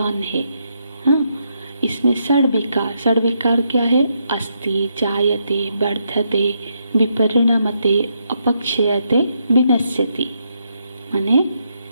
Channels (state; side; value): inverted; both; correlation -0.79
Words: है। हाँ, इसमें षड विकार क्या है? अस्ति, जायते, वर्धते, विपरिणमते, अपक्षयते, विनश्यति। माने